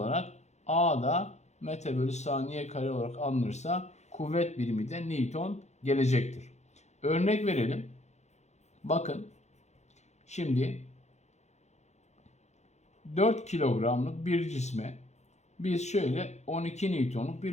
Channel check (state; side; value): late; right; 0.33 ms